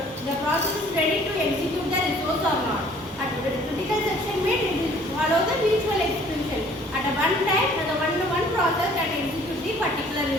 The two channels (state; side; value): normal; both; correlation 0.55